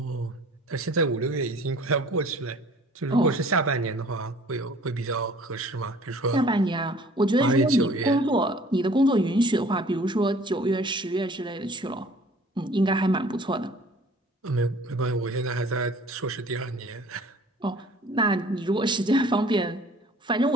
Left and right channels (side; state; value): both; normal; correlation 0.51